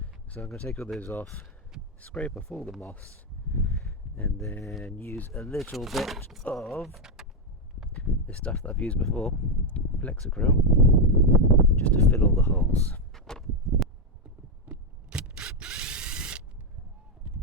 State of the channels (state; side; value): normal; both; correlation 0.05